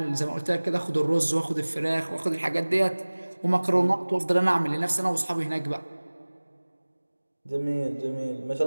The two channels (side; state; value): both; inverted; correlation -1.00